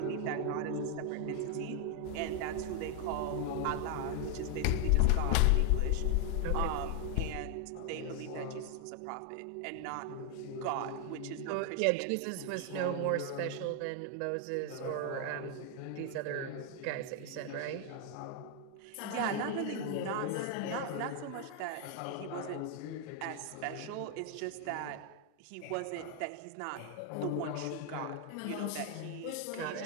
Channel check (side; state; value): both; different; correlation 0.00